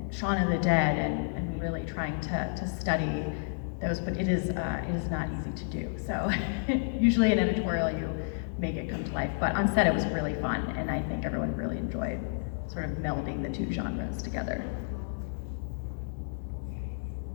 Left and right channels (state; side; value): silent; right; digital silence